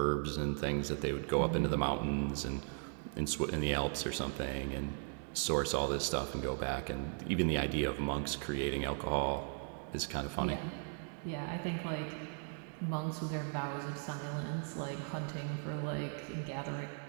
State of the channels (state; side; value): silent; left; 53 dB below the other